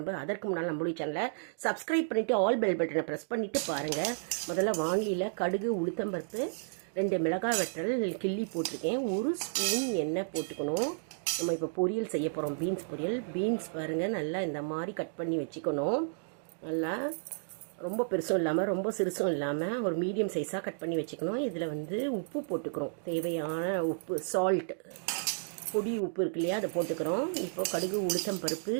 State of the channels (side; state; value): left; silent; digital silence